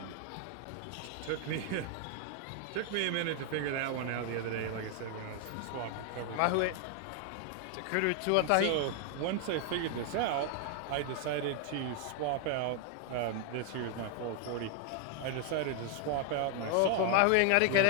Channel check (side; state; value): both; different; correlation 0.00